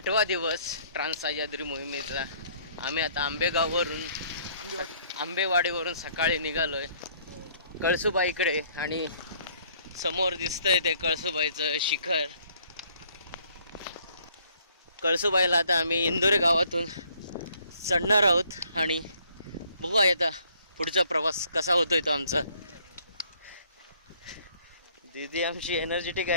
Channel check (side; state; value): both; inverted; correlation -0.63